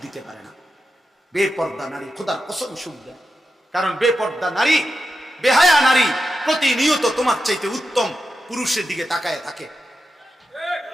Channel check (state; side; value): normal; both; correlation 0.89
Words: দিতে পারে না। বেপর্দা নারী খোদার কসম সুখ দেয়, কারণ বেপর্দা নারী, বেহায়া নারী প্রতিনিয়ত তোমার চাইতে উত্তম পুরুষের দিকে তাকায় থাকে।